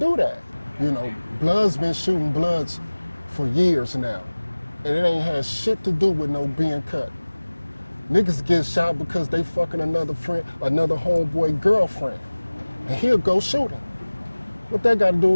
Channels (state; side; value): inverted; both; correlation -1.00